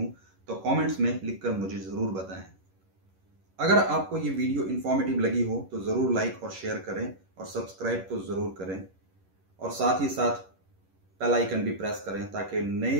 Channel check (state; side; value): late; left; 11 ms